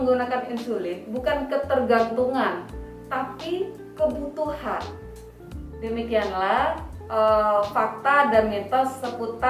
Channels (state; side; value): identical; both; correlation 1.00